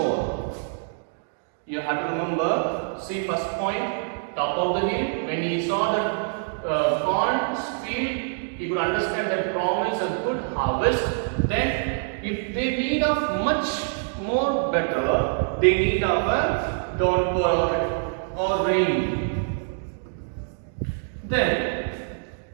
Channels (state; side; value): silent; left; digital silence